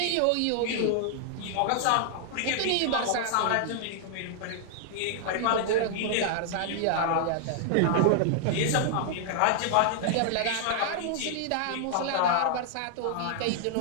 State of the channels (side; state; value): both; different; correlation -0.01